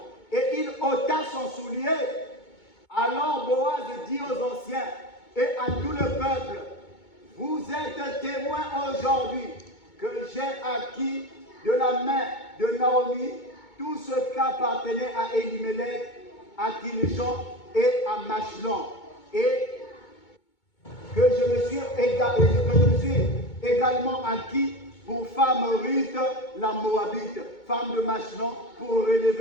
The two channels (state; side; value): late; right; 2.2 ms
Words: Et il ôta son soulier. Alors Boaz dit aux anciens et à tout le peuple, vous êtes témoins aujourd'hui que j'ai acquis de la main de Naomi tout ce qu'appartenait à Elimelech, à Kilishon et à Machlon, et que je me suis également acquis pour femme Ruth la Moabite, femme de Machlon, pour